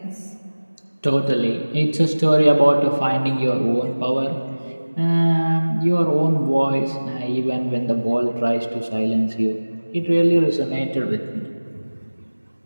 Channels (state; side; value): inverted; both; correlation -1.00